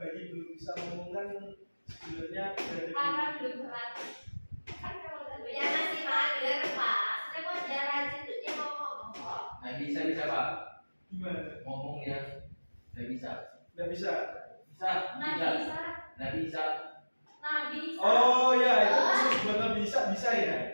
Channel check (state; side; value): inverted; both; correlation -1.00